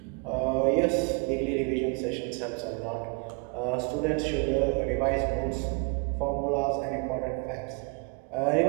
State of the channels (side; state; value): left; quieter; 33.6 dB